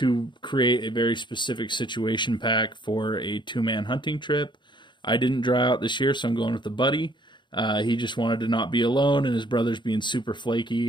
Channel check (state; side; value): late; right; 0.23 ms